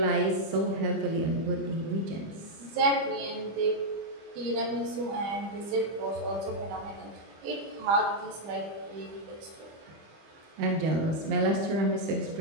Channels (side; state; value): left; late; 25 ms